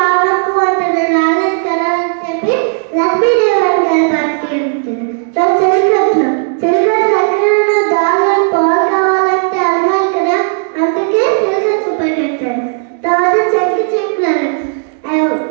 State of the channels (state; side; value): silent; left; 60 dB below the other